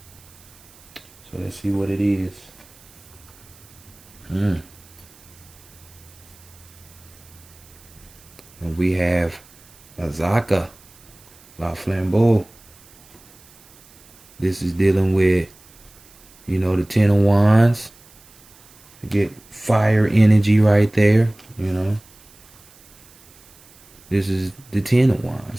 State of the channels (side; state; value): right; noise; hiss, 26 dB below the sound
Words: So let's see what it is. And we have Azaka, La Flambeau. This is dealing with, you know, the Ten of Wands. You get fire energy right there, you know. This is the Ten of